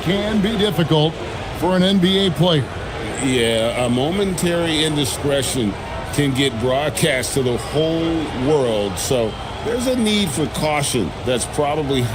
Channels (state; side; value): identical; both; correlation 1.00